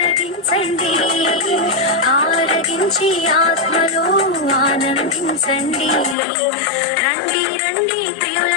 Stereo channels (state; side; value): drops out; right; at 6.2 s